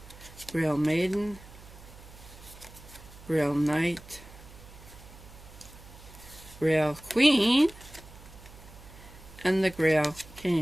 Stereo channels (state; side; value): noise; right; hum, 19 dB below the sound